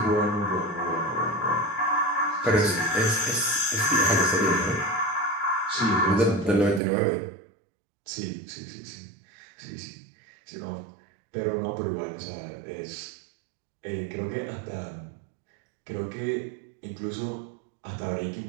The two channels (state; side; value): drops out; left; at 6.8 s